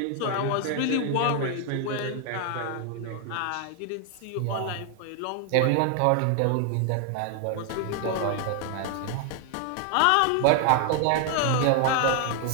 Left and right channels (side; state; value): both; different; correlation 0.00